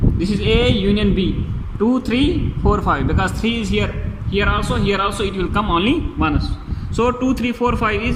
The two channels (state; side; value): identical; both; correlation 1.00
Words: This is A union B. 2, 3, 4, 5, because 3 is here, here also it will come only once. So 2, 3, 4, 5